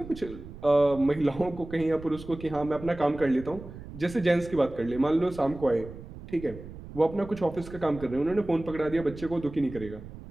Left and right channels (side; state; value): right; noise; rumble, 14 dB below the sound